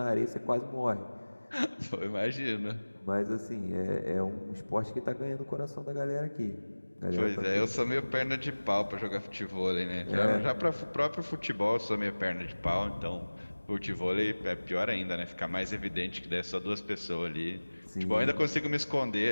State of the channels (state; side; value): inverted; both; correlation -1.00